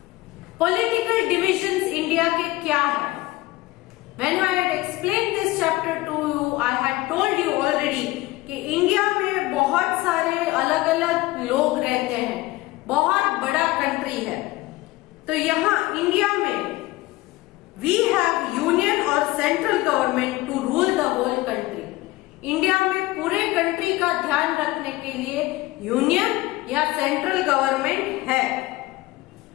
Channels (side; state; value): right; quieter; 19.6 dB